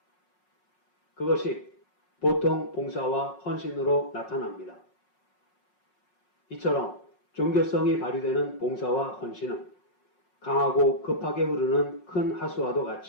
그것이 보통 봉사와 헌신으로 나타납니다. 이처럼 종교성이 발휘되는 봉사와 헌신은 강하고 급하게 흐르는 큰 하수와도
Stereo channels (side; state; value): right; late; 5.5 ms